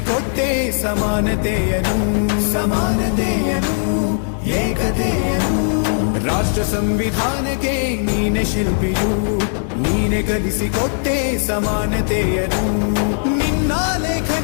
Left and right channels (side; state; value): right; silent; digital silence